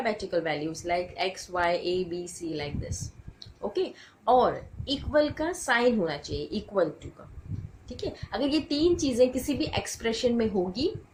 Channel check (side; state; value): both; identical; correlation 1.00